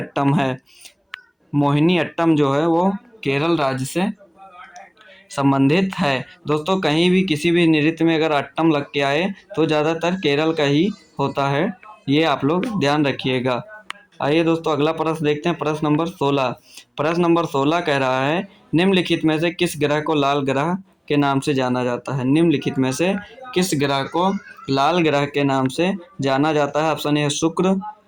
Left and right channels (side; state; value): both; identical; correlation 1.00